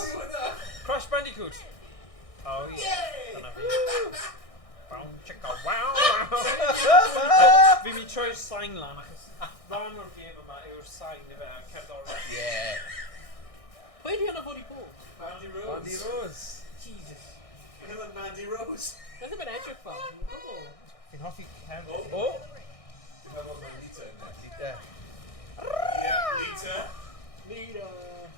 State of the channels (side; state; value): right; late; 1.6 ms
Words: are you with that? Crash Bandicoot. Oh, yeah. Yay! Dyna fi. Bow, chicka, wow, Fi'n mynd troi'r sain lan achos rhan o'r gêm yma yw'r sain i fe cerddoriaeth. Yeah. Pwy di hwnna fod i bod? Mandy Rose. Mandy Rose. Jesus. Look at that Mandy Rose. Beth yw'n edrych fel? Oh. Fi'n hoffi cefn. Oh. Oh. You have one by Lita in there. Lita. Yeah, Lita. Nita.